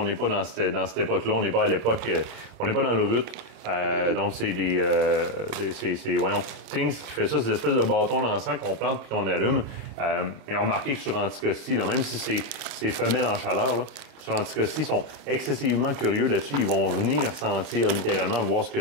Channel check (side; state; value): left; late; 28 ms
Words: n'est pas dans cette époque-là. On n'est pas à l'époque... on n'est pas dans le RUT. Donc, c'est voyons, Things qui fait ça, c'est des espèces de bâtons d'encens qu'on plante puis qu'on allume. Et on remarqué que sur Anticosti, là, même si c'est femelle en chaleur, là, sur Anticosti, ils sont excessivement curieux là-dessus. Ils vont venir sentir littéralement, voir ce que